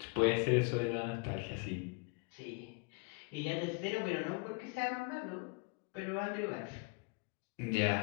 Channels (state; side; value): quieter; right; 31.1 dB